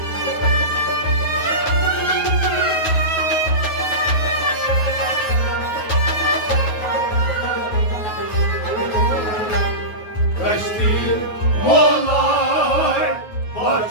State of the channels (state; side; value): late; right; 9.4 ms